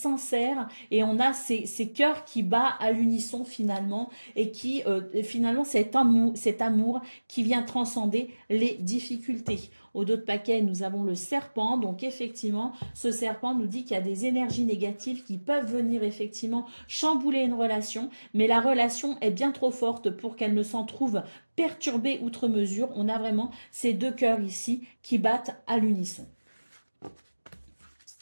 et on a ces cœurs qui battent à l'unisson finalement et qui finalement cet amour qui vient transcender les difficultés. Au dos de paquet, nous avons le serpent. Donc effectivement, ce serpent nous dit qu'il y a des énergies négatives qui peuvent venir effectivement chambouler une relation, mais la relation est bien trop forte pour qu'elle ne s'en trouve perturbée outre mesure. On a vraiment ces deux cœurs ici qui battent à l'unisson.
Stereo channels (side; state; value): both; inverted; correlation -1.00